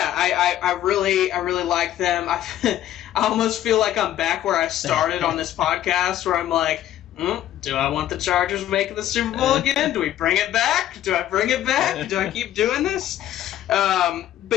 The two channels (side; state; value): right; quieter; 12.5 dB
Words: really like them. I almost feel like I'm back where I started on this podcast, where I'm like, do I want the Chargers making the Super Bowl again? Do we bring it back? Do I bring it back? Do I keep doing this?